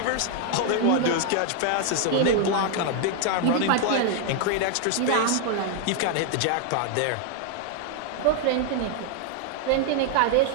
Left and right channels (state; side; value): different; both; correlation 0.00